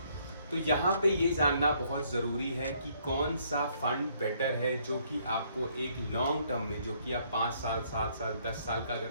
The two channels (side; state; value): both; inverted; correlation -0.67